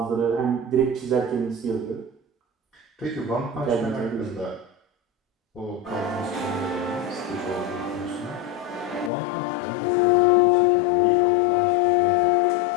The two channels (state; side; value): drops out; right; at 9.1 s